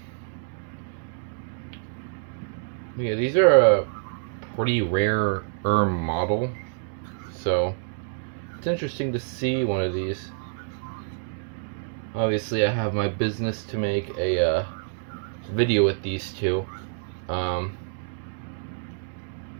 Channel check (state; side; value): silent; left; digital silence